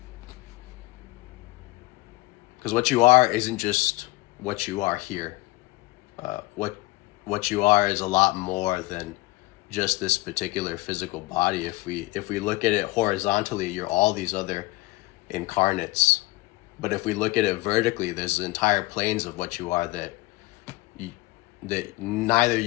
Because what you are isn't just what you are here. What you are is a lot more than just this particular physical body. If we look at it horizontally, you're all these other incarnates. But if we look at it vertically, there's entire planes of what you are that neither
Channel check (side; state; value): right; quieter; 20.7 dB